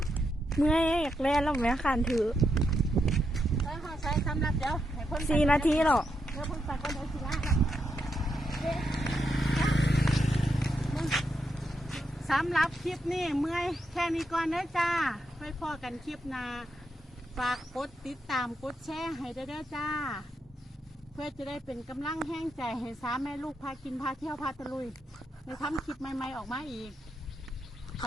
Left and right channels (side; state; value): both; normal; correlation 0.82